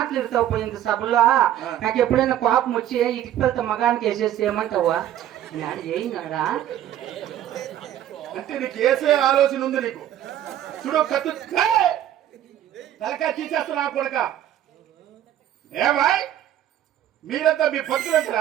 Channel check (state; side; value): quieter; left; 11.8 dB